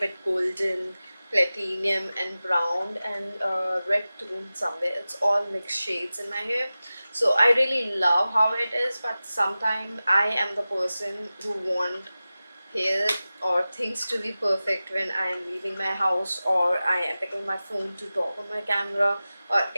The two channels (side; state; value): both; inverted; correlation -0.96